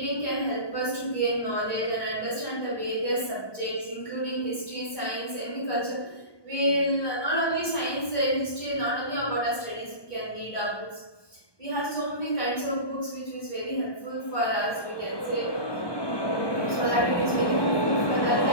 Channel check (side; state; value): right; late; 1.2 ms